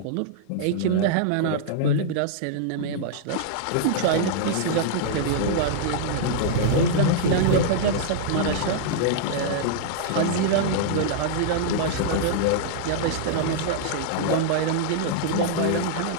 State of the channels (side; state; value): both; different; correlation -0.01